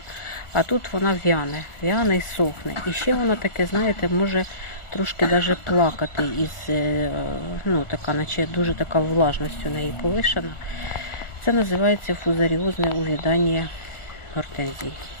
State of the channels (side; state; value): right; late; 1.4 ms